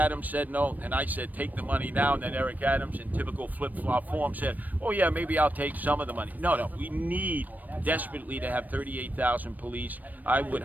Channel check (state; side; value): late; left; 0.083 ms